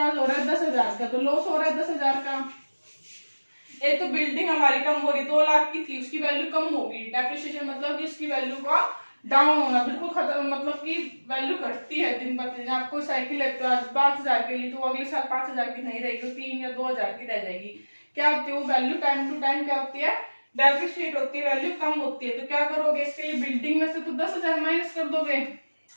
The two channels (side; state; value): both; inverted; correlation -1.00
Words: हो रहा है 10,000 का, तो लॉस हो रहा है 10,000 का। एक तो बिल्डिंग हमारी कम हो रही, 2 लाख की थी, उसकी वैल्यू कम होगी, डेप्रिसिएशन मतलब कि इसकी वैल्यू का डाउन होना, बिल्कुल खत्म, मतलब कि वैल्यू घटती है दिन ब दिन। आपको साइकिल है तो आज 5,000 के लिए, तो अगले साल 5,000 की नहीं रहेगी, 3 या 2,000 की रह जाएगी। क्या होती है वो वैल्यू, टाइम टू टाइम क्या होती है, डेप्रिशिएट होती है, वैल्यू कम होती है। तो क्या करोगे, इसके लिए बिल्डिंग में से तो 10,000 माइनस कर दोगे,